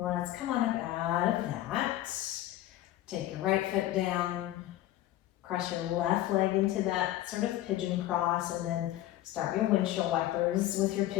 come on up out of that. Take your right foot down, cross your left leg into that sort of pigeon cross, and then start your windshield wipers with your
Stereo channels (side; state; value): right; quieter; 14.4 dB